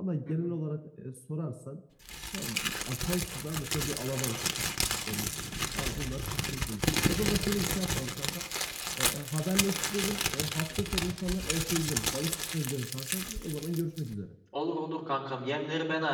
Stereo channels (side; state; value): both; identical; correlation 1.00